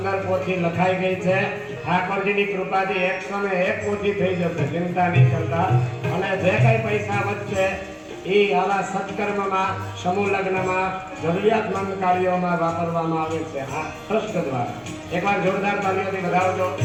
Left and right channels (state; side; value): identical; both; correlation 1.00